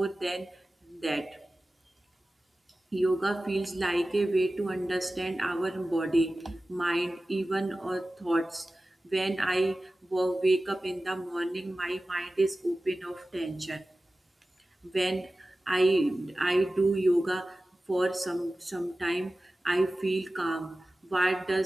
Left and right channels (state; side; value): normal; both; correlation 0.96